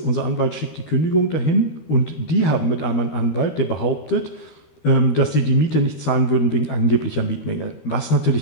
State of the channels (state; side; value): late; right; 13 ms